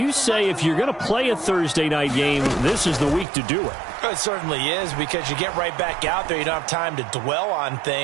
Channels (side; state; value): left; drops out; at 3.2 s